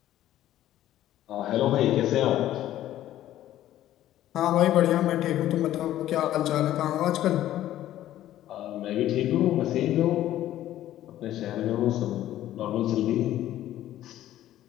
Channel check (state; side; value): quieter; right; 13.2 dB